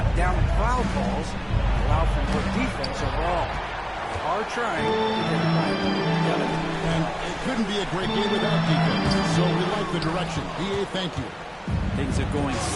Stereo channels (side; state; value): both; identical; correlation 1.00